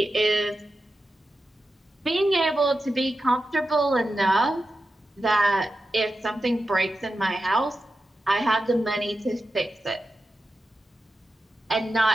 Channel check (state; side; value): normal; both; correlation 0.91